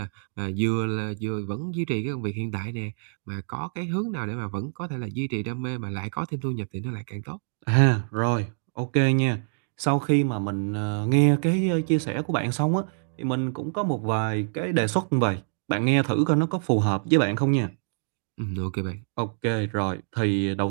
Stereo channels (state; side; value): silent; left; digital silence